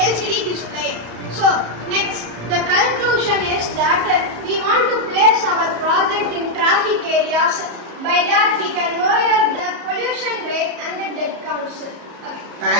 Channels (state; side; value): late; left; 34 ms